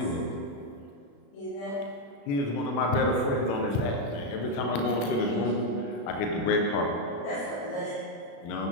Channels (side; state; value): right; late; 35 ms